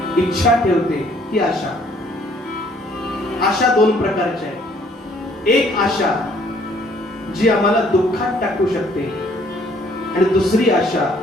इच्छा ठेवते, ती आशा. आशा दोन प्रकारच्या आहेत. एक आशा जी आम्हाला दुःखात टाकू शकते आणि दुसरी आशा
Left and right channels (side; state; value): both; normal; correlation 0.62